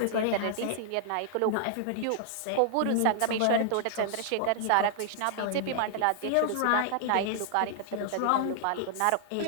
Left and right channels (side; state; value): both; different; correlation -0.01